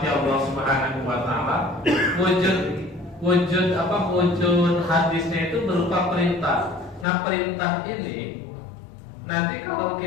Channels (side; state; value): right; drops out; at 7.1 s